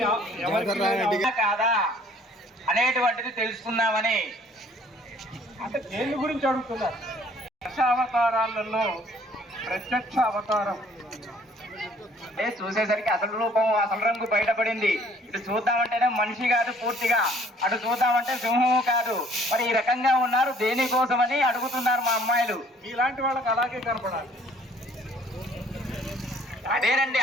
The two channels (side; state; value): both; normal; correlation 0.58